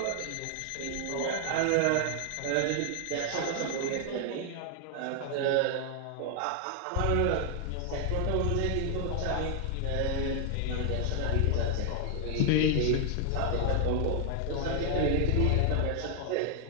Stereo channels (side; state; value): both; different; correlation 0.00